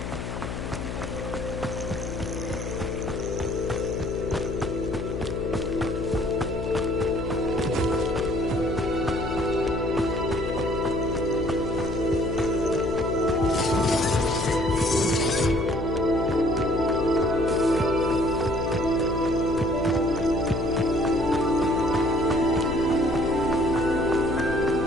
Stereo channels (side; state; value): left; noise; hum, 5 dB below the sound